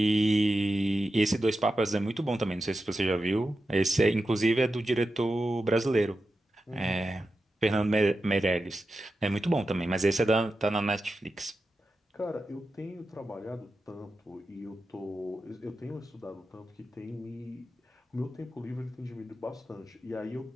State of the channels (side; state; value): both; normal; correlation 0.91